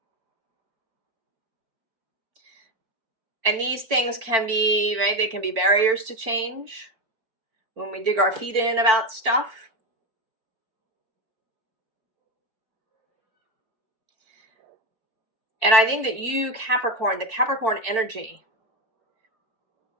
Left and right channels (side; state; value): left; late; 4.5 ms